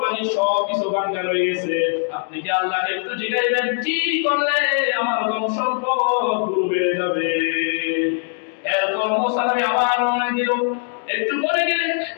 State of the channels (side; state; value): right; silent; 60 dB below the other